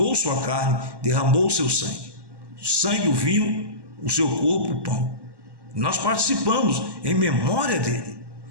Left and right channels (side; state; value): left; late; 1.1 ms